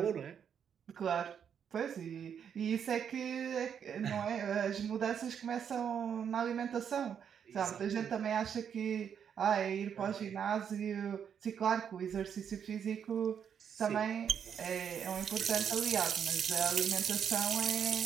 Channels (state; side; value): quieter; left; 7.9 dB